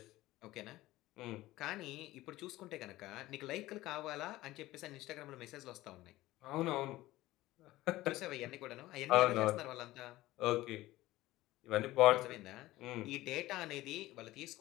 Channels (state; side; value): quieter; right; 17.1 dB